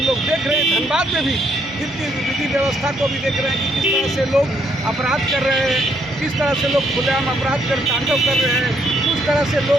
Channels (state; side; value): normal; both; correlation 0.70